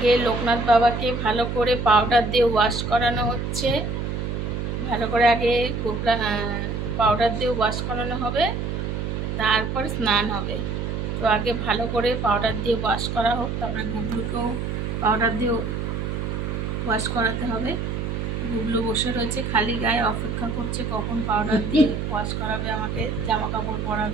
লোকনাথ বাবাকে ভালো করে পাউডার দিয়ে ওয়াশ করানো হচ্ছে। ভালো করে আগে পাউডার দিয়ে ওয়াশ করানো হবে, তারপর স্নান হবে। তো আগে ভালো করে পাউডার দিয়ে ওয়াশ করা হোক, তারপরে গুবলুকেও পাউডার দিয়ে ওয়াশ করাতে হবে। গুবলু বসে রয়েছে খালি গায়ে, অপেক্ষা করছে কখন পাউডার দিয়ে ওয়াশ করাবে, আমাকে জামা কাপড়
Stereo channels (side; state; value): right; noise; hum, 3 dB below the sound